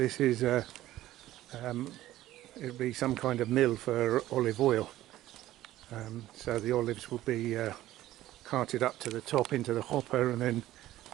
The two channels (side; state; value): left; quieter; 14.7 dB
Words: is it'll be some kind of mill for olive oil. So the olives will be carted up to the top into the hopper and then